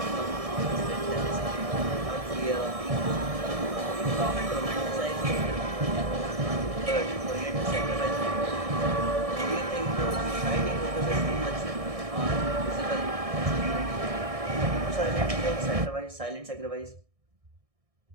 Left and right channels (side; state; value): left; late; 1.6 ms